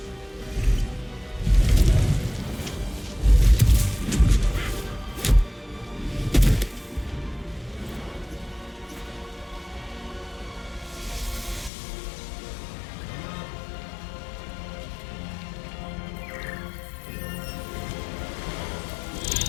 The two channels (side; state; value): right; drops out; at 11.7 s